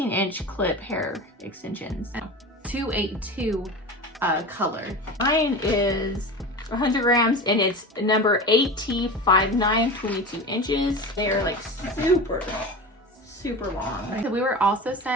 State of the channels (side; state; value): both; normal; correlation 0.30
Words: clip hair extensions. 282 color. Mine is 100 grams and it's number AT59, 22 inches. They are like super long. So we were also